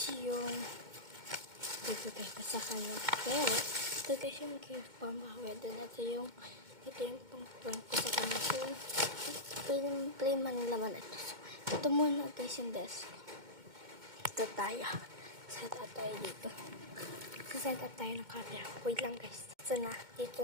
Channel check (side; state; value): left; late; 2.2 ms